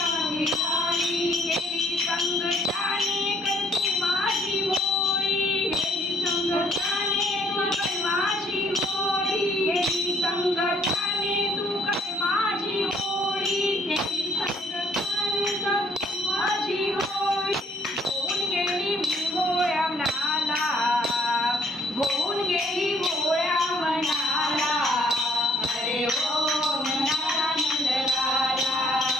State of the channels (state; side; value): normal; both; correlation 0.64